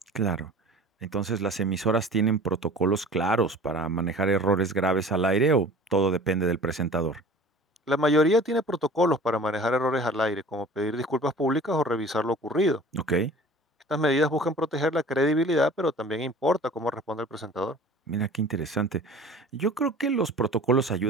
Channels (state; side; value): normal; both; correlation 0.43